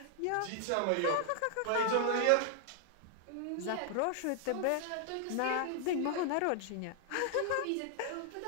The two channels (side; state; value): both; different; correlation 0.00